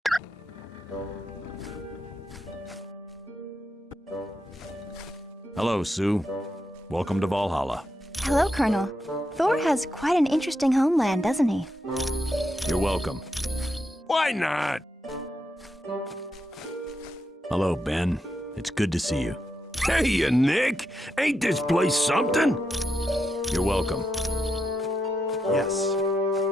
Hello, Sue. Welcome to Valhalla. Hello, Colonel. Thor has quite an interesting homeland, doesn't he? You're welcome. Why not? Hello, Ben. It's good to see you. Hey, Nick. Ain't this place something? You're welcome. Yes.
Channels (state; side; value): normal; both; correlation 0.84